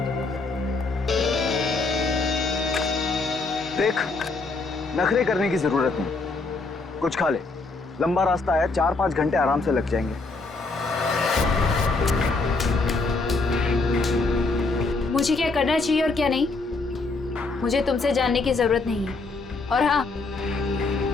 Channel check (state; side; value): quieter; right; 3.7 dB